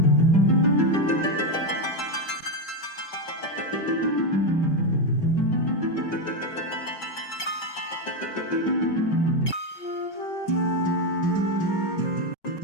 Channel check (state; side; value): late; right; 5.3 ms